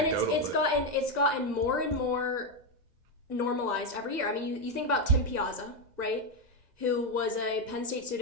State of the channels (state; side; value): late; left; 2.0 ms